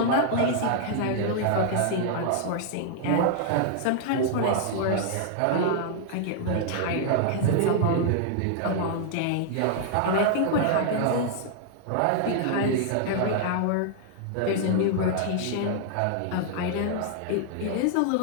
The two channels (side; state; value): both; different; correlation -0.01